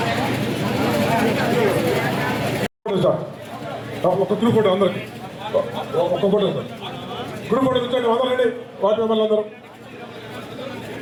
ఒక గ్రూప్ ఫోటో అందరికి ఒక్క ఫోటో గ్రూప్ ఫోటో కూర్చోండి అందరండి వార్డు మెంబర్లు అందరూ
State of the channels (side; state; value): both; identical; correlation 1.00